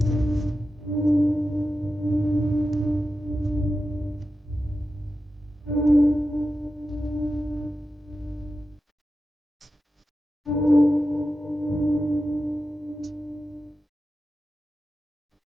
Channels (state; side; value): normal; both; correlation 0.91